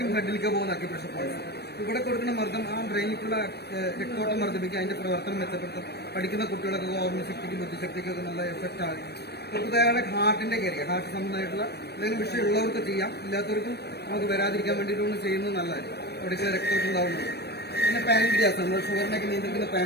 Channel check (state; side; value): late; right; 0.47 ms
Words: ഹെഡിലേക്കും പോകുന്ന അക്യുപ്രഷർ പോയിന്റ് ഇവിടെ കൊടുക്കുന്ന മർദ്ദം ആ ബ്രെയിനിക്കുള്ള രക്തോട്ടം വർദ്ധിപ്പിക്കുക, അതിന്റെ പ്രവർത്തനം മെച്ചപ്പെടുത്തും. പഠിക്കുന്ന കുട്ടികളൊക്കെ ഓർമ്മശക്തിക്കും ബുദ്ധിശക്തിക്കും ഒക്കെ നല്ല എഫക്റ്റ് ആകും. പുതുതായ ഹാർട്ടിന്റെ കാര്യം, ഹാർട്ട് സംബന്ധമായിട്ടുള്ള എന്തെങ്കിലും വിഷയം ഉള്ളവർക്ക് ചെയ്യാം, ഇല്ലാത്തവർക്കും നമുക്ക് വരാതിരിക്കാൻ വേണ്ടിയിട്ടൊന്ന് ചെയ്യുന്നത് നല്ലതായിരിക്കും. അവിടേക്ക് രക്തോട്ടം ഉണ്ടാവുന്നത്. പിന്നെ പാൻക്രിയാസ്, നമ്മൾ ഷുഗറിനൊക്കെ നിയന്ത്രിക്കുന്ന